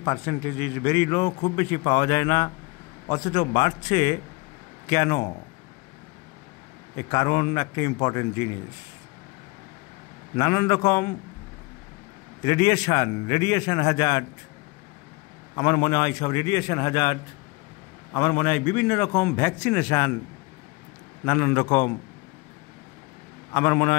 percentage is very low, খুব বেশি পাওয়া যায় না, অথচ বাড়ছে কেন? এর কারণ একটা ইম্পর্টেন্ট জিনিস, নানান রকম রেডিয়েশন হ্যাজার্ড। আমার মনে হয় সব রেডিয়েশন হ্যাজার্ড, আমার মনে হয় বিভিন্ন রকম ভ্যাকসিনেশান, নানান রকম, আমার মনে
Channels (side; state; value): right; quieter; 26.2 dB